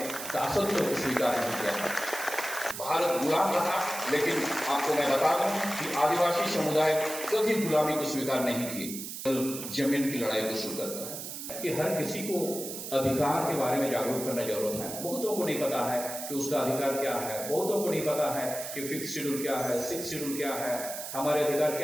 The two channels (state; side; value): noise; right; hiss, 8 dB below the sound